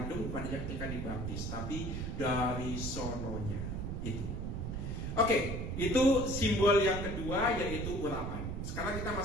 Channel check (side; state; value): right; noise; rumble, 3 dB below the sound